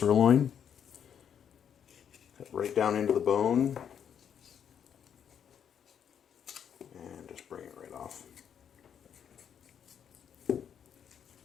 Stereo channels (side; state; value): right; quieter; 8.4 dB